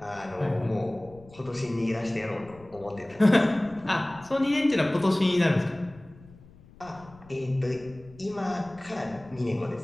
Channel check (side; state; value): left; noise; rumble, 23 dB below the sound